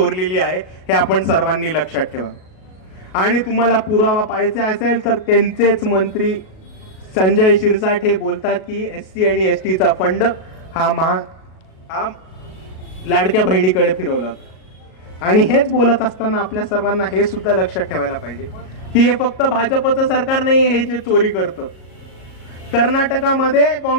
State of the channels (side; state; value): right; late; 37 ms